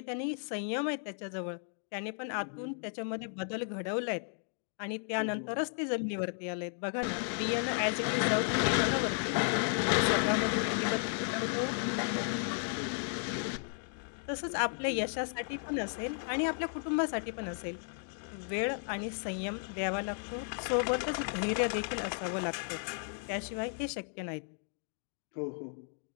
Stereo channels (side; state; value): right; silent; 55 dB below the other